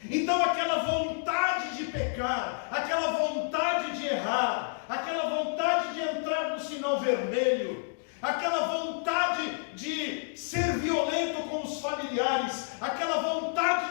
Então aquela vontade de pecar, aquela vontade de errar, aquela vontade de entrar sinal vermelho, aquela vontade de ser violento com os familiares, aquela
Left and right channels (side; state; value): right; silent; digital silence